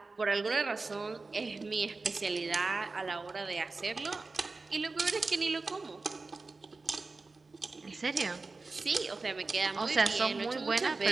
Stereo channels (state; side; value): quieter; left; 3.7 dB